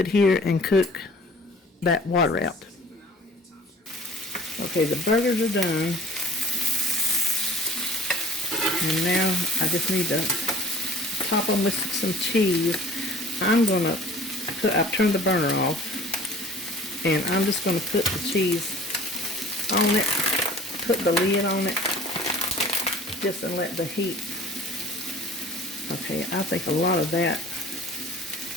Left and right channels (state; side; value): normal; both; correlation 0.47